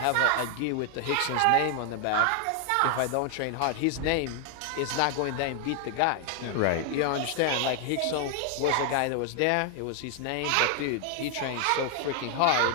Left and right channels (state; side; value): different; both; correlation 0.00